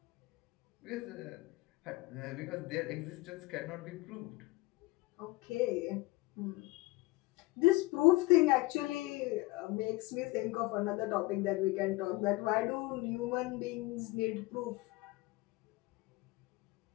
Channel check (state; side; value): quieter; right; 21.1 dB